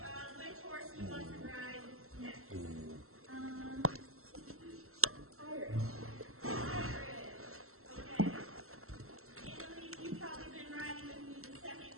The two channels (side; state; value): left; late; 0.63 ms